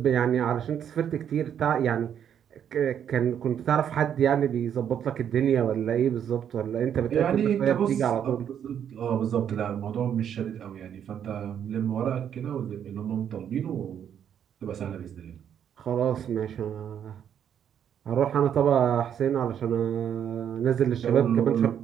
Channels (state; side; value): quieter; left; 9.0 dB